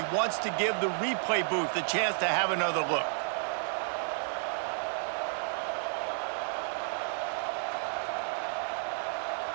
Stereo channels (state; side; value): silent; left; 57 dB below the other